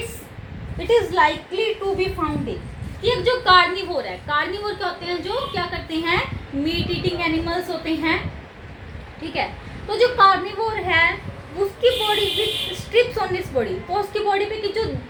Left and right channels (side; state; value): both; identical; correlation 1.00